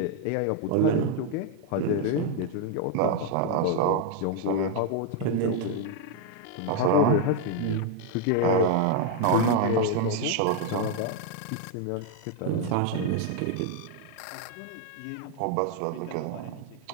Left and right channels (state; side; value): different; both; correlation 0.01